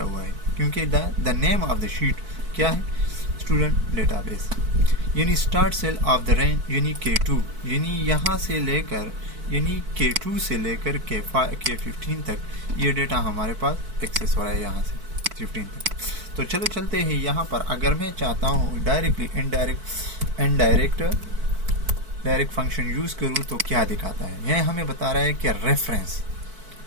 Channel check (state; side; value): late; left; 4.5 ms